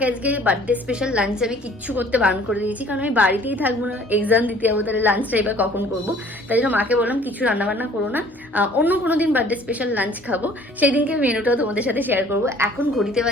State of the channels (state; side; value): normal; both; correlation 0.54